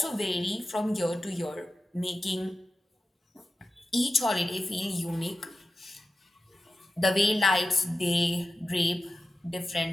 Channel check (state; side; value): normal; both; correlation 0.93